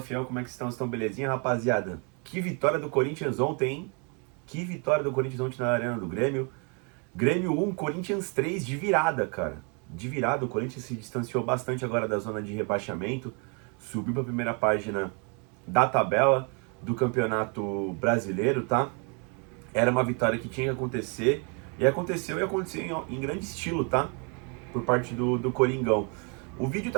fiel, como é que estão? Estão belezinha, rapaziada? Que vitória do Corinthians ontem, hein? Que vitória do Corinthians ontem na Arena do Grêmio. Grêmio 1, Corinthians 3 de virada, cara. De virada, o Corinthians se distanciou bastante agora da zona de rebaixamento, subiu para a primeira página da tabela do Campeonato Brasileiro, tá? Era uma vitória que tinha que acontecer, e aconteceu em grande estilo, tá? Por parte do Coringão. O vídeo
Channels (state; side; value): quieter; left; 35.8 dB